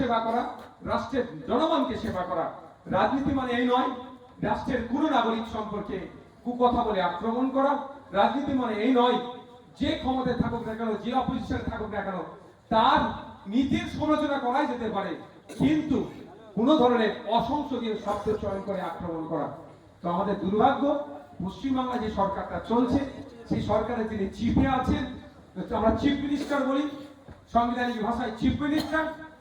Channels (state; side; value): identical; both; correlation 1.00